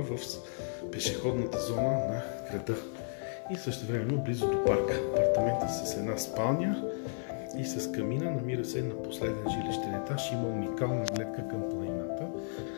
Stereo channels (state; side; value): silent; right; 56 dB below the other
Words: в пешеходната зона на града и същевременно близо до парка. Апартаментът с една спалня и с камина, намира се на последен жилищен етаж, има уникална гледка към планината.